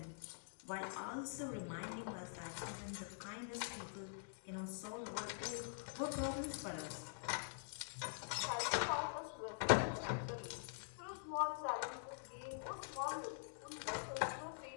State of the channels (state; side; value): silent; right; digital silence